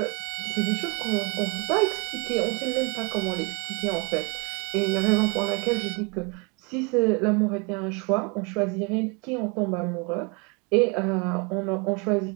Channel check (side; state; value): left; quieter; 31.9 dB